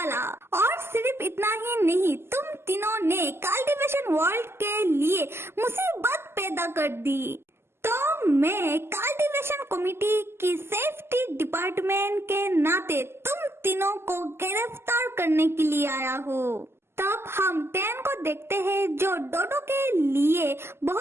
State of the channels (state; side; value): late; left; 0.12 ms